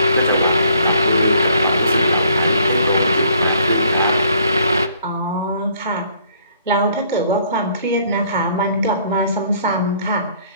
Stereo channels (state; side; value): inverted; both; correlation -0.62